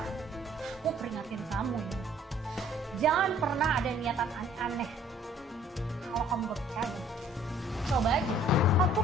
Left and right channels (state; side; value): normal; both; correlation 0.57